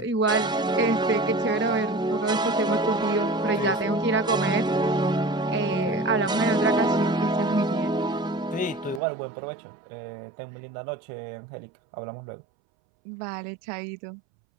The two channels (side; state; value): left; drops out; at 9.0 s